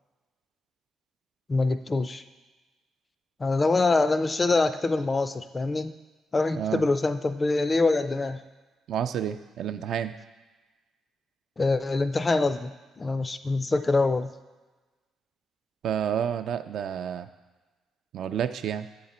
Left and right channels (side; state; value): both; normal; correlation 0.88